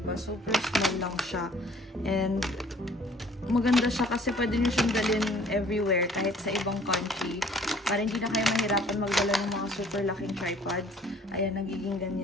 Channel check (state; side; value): normal; both; correlation 0.55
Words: Super small lang siya. And maganda siya kasi pwede nyo siyang dalhin everywhere kahit sa ibang country. Para hindi na kayo mahirapan magdala ng mga super laking tripods. Ayan, nagiging